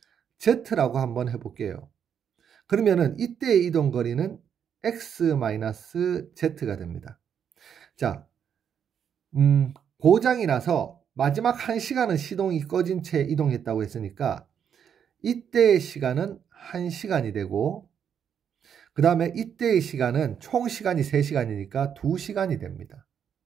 z라고 한번 해볼게요. 그러면은 이때의 이동 거리는 x-z가 됩니다. 자, 고장이 나서 마지막 1시간은 시동이 꺼진 채 이동했다고 했으니까 이때의 시간은 1시간이 되고 그 다음에 이때의 시간은 총 시간이 3시간이니까 2시간이 됩니다.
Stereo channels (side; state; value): left; quieter; 8.1 dB